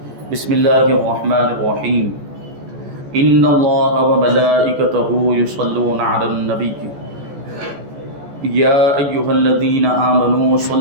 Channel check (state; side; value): late; left; 14 ms